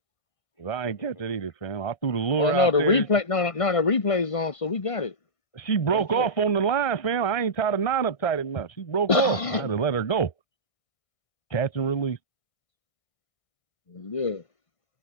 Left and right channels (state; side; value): late; right; 1.5 ms